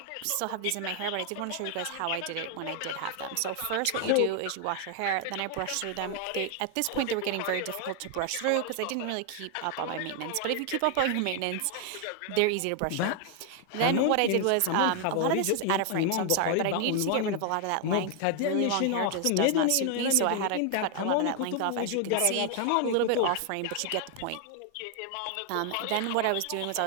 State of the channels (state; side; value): different; both; correlation 0.00